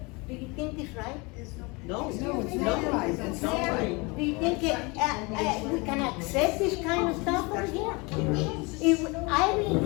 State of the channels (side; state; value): right; quieter; 27.1 dB